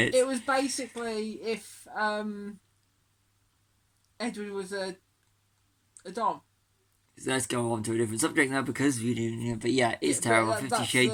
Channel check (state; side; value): identical; both; correlation 1.00